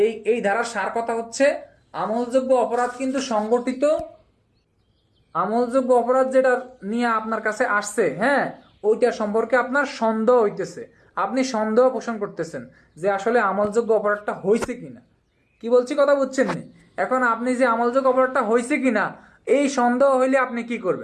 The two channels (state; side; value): identical; both; correlation 1.00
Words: এই ধারার সার কথা হচ্ছে আমলযোগ্য অপরাধ কিন্তু সংগঠিত, আমলযোগ্য অপরাধ যেটা নিয়ে আপনার কাছে আসছে, হ্যাঁ, ওইটা সম্পর্কে আপনার সন্দেহ হইতেছে, আপনি সন্দেহ পোষণ করতেছেন যে আসলে আমলযোগ্য অপরাধটা হয়েছে কিনা। কি বলছি কথা বুঝছেন নি? এখন আপনি যে আমলযোগ্য অপরাধটা হয়েছে কিনা এই সন্দেহ হইলে আপনি কি